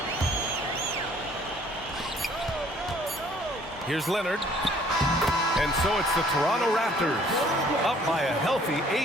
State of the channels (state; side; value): normal; both; correlation 0.58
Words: Here's Leonard. And so it's the Toronto Raptors up by a healthy